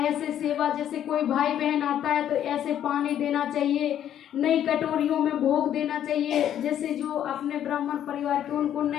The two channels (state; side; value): quieter; right; 10.5 dB